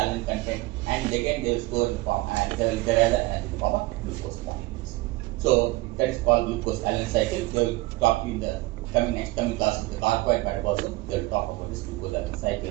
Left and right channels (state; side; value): quieter; left; 20.6 dB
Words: content and again they will store in the form and they will derive the energy in the form of glucose molecules. So that is called glucose alanine cycle. They will talk in the coming classes, the carbohydrate metabolism. They will talk about this glucose alanine